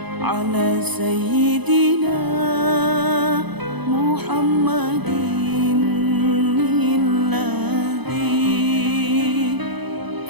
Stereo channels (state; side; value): late; left; 0.99 ms